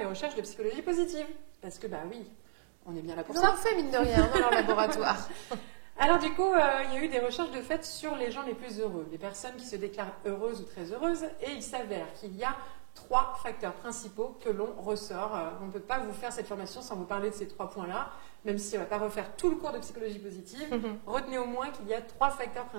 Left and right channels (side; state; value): left; silent; digital silence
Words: recherches de psychologie positive. Parce que, oui, on est bien là pour ça. On en fait, mine de rien, dans leur laboratoire. Alors du coup, il y a eu des recherches de fait sur les gens les plus heureux, les personnes qui se déclarent heureuses ou très heureuses, et il s'avère qu'il y a 3 facteurs principaux que l'on ressort. On ne peut pas vous faire cette formation sans vous parler de ces 3 points-là, même si on ne va pas refaire tout le cours de psychologie positive. Retenez au moins qu'il y a 3 facteurs